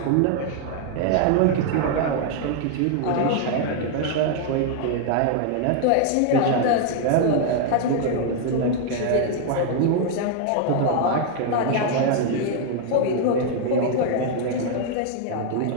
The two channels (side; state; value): both; different; correlation 0.00